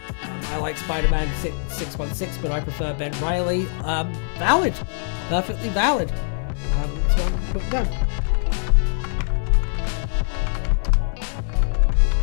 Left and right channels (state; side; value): silent; right; digital silence